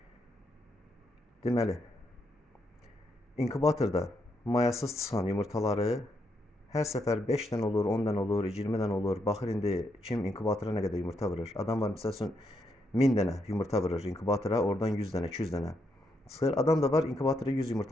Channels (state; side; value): normal; both; correlation 0.79